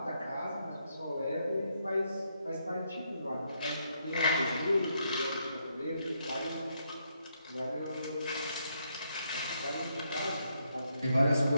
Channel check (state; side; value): inverted; both; correlation -0.77